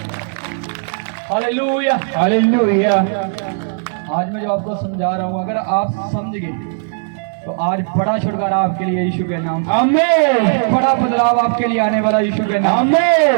Hallelujah, hallelujah. आज मैं जो आपको समझा रहा हूं, अगर आप समझ गए तो आज बड़ा छुटकारा आपके लिए यीशु के नाम, आमीन। बड़ा बदलाव आपके लिए आने वाला यीशु के नाम,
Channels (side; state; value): left; silent; digital silence